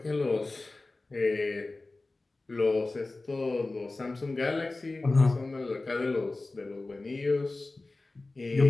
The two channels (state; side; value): quieter; right; 3.2 dB